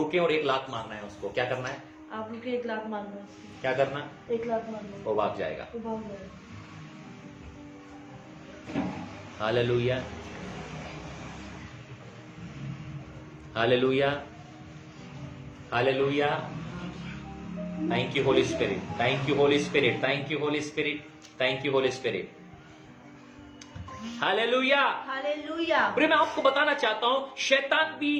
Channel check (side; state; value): both; identical; correlation 1.00